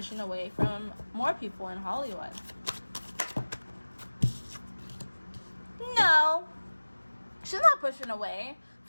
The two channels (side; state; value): both; inverted; correlation -1.00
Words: away from more people in Hollywood? No, she's not pushing away